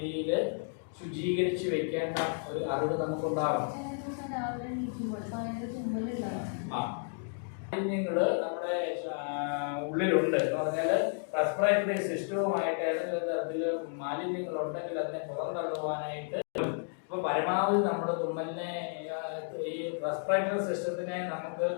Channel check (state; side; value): silent; right; 56 dB below the other